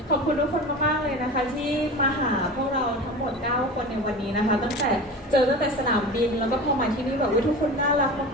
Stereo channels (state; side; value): normal; both; correlation 0.32